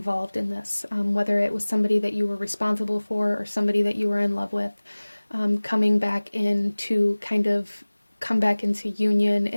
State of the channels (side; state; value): both; inverted; correlation -1.00